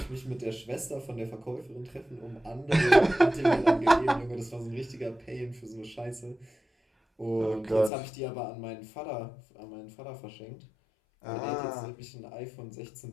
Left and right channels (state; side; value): drops out; right; at 7.9 s